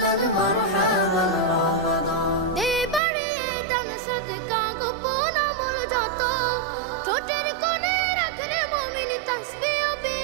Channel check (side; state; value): left; drops out; at 3.0 s